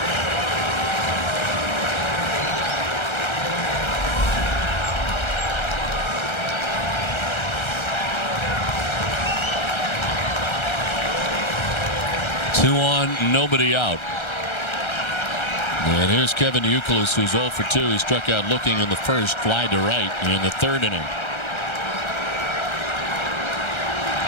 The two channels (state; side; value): late; right; 1.3 ms